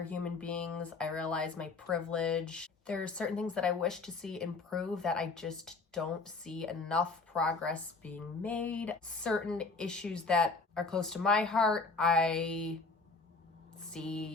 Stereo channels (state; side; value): quieter; right; 3.9 dB